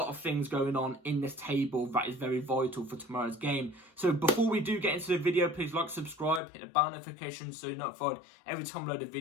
of things going on in this table that is very vital for tomorrow's game. So before we do get into the video, please like, subscribe, hit the bell notification so you're notified every time I load a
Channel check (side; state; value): right; drops out; at 6.4 s